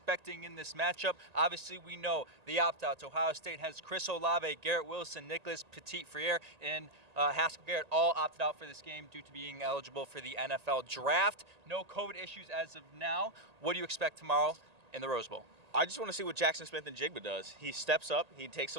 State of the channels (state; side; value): late; left; 1.8 ms